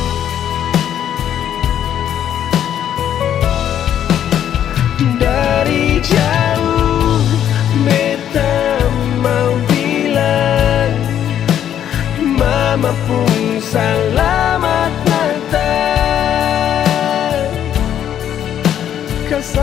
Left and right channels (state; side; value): quieter; right; 10.1 dB